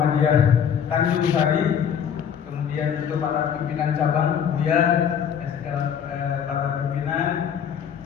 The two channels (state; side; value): quieter; right; 8.0 dB